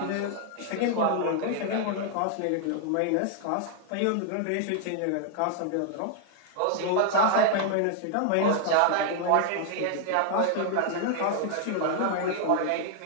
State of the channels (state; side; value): different; both; correlation 0.00